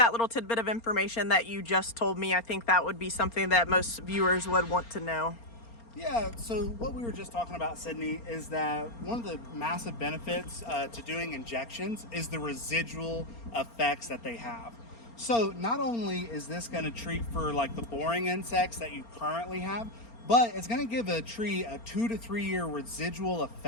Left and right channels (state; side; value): late; right; 4.3 ms